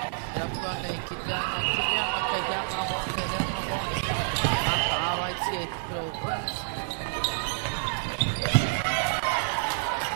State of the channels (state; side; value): silent; left; digital silence